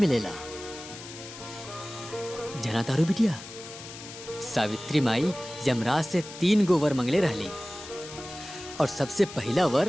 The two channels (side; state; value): left; noise; hiss, 14 dB below the sound